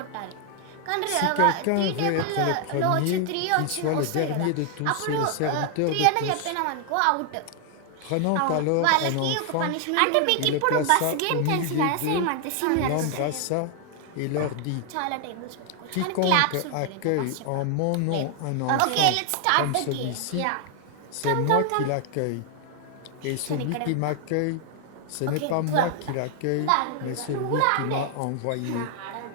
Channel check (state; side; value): different; both; correlation 0.00